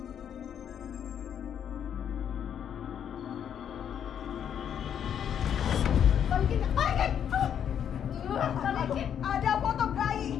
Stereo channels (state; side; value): quieter; right; 8.8 dB